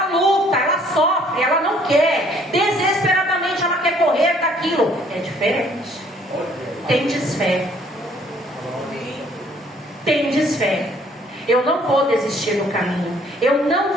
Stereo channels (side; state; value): both; normal; correlation 0.61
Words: luta, ela sofre, ela não quer, desesperadamente ela quer correr daquilo. É diferente. Tem desfé. Tem desfé. Eu não vou desistir do caminho. Eu não